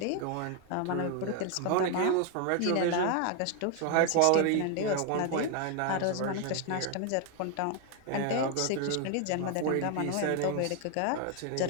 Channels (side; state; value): both; different; correlation 0.01